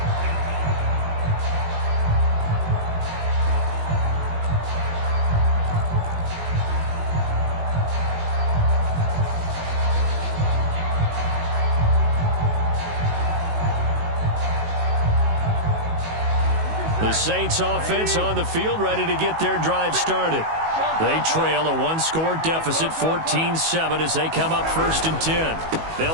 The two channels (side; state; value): left; late; 19 ms